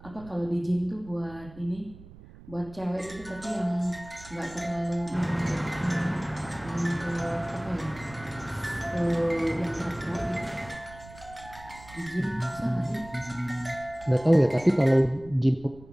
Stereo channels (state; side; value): noise; right; rumble, 19 dB below the sound